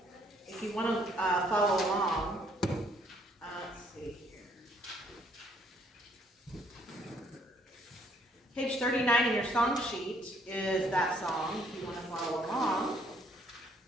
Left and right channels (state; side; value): normal; both; correlation 0.66